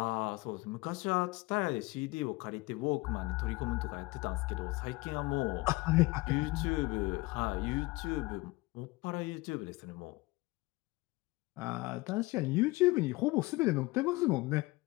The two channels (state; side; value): quieter; right; 22.3 dB